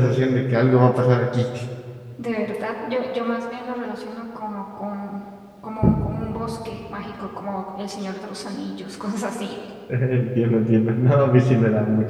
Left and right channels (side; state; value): both; identical; correlation 1.00